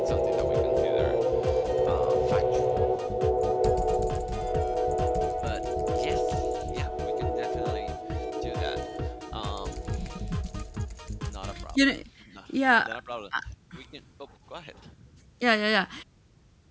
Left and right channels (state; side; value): identical; both; correlation 1.00